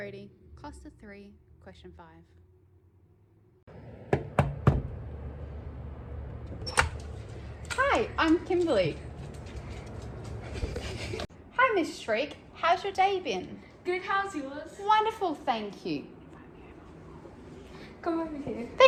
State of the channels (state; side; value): identical; both; correlation 1.00